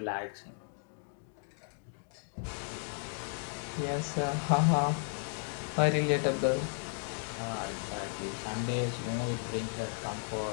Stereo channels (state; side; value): silent; right; 55 dB below the other